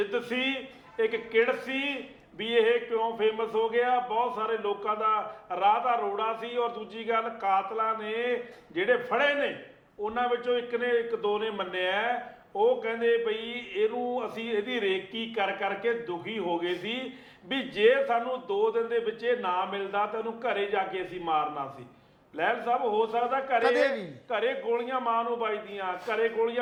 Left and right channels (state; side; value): identical; both; correlation 1.00